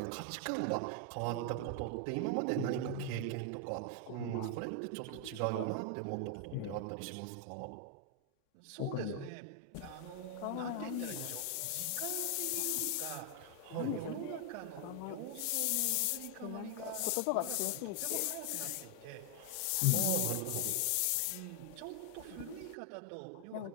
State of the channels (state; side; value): different; both; correlation 0.00